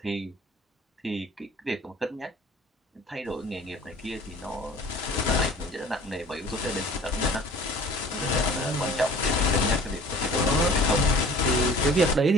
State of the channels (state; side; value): normal; both; correlation 0.47